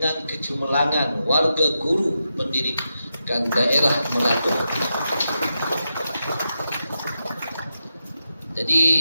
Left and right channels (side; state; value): both; inverted; correlation -0.87